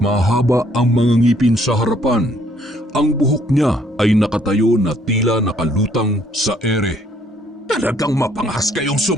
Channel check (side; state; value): both; normal; correlation 0.65